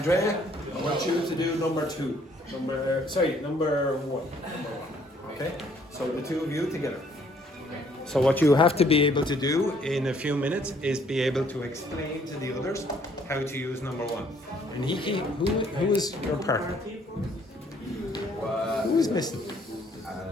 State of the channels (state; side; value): normal; both; correlation 0.63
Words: I want you to do number one. Okay, so the two of you together. So what you have to be able to do in a few minutes is be able to explain to the others how to use number one. And who is your partner? Who is missing?